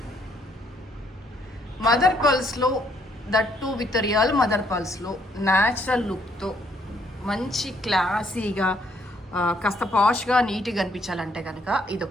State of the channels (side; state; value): both; normal; correlation 0.69